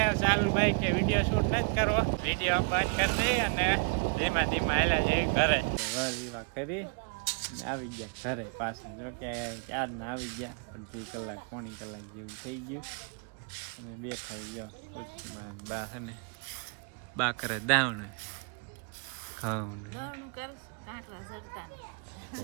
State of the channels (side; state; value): left; quieter; 34.7 dB